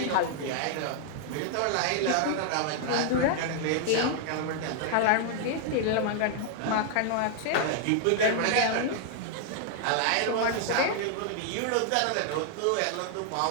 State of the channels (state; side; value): different; both; correlation -0.01